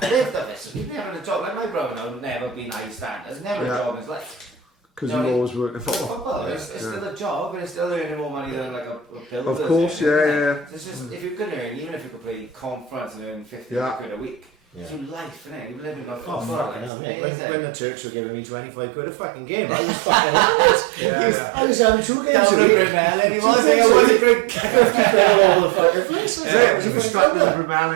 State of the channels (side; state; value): left; drops out; at 16.9 s